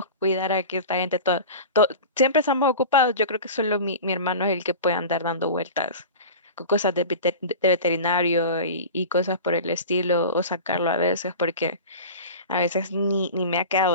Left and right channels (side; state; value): both; inverted; correlation -0.33